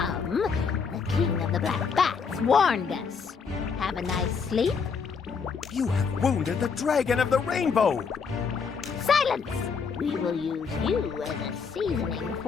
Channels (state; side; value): quieter; right; 5.7 dB